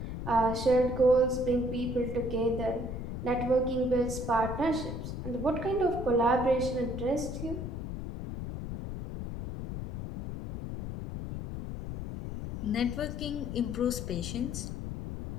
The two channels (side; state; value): left; noise; rumble, 6 dB below the sound